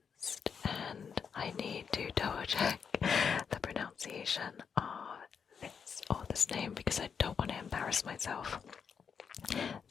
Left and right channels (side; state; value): right; quieter; 6.6 dB